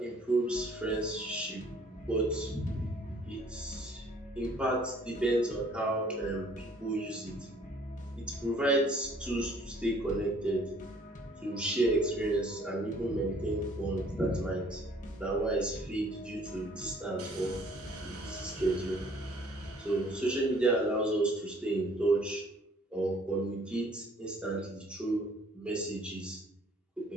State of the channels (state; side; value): normal; both; correlation 0.58